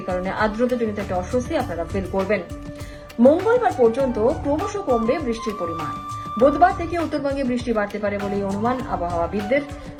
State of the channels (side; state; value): both; identical; correlation 1.00